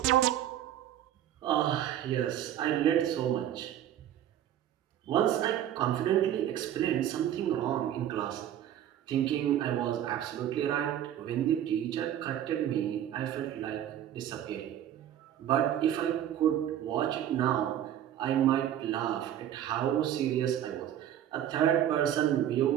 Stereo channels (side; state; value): left; quieter; 11.1 dB